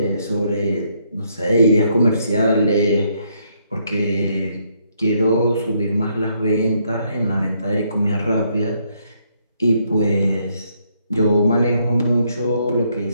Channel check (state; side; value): inverted; both; correlation -0.72